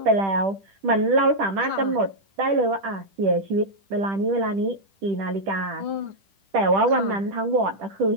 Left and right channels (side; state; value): left; late; 10 ms